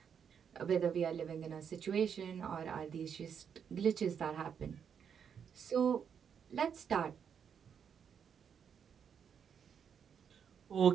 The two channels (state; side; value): quieter; left; 7.5 dB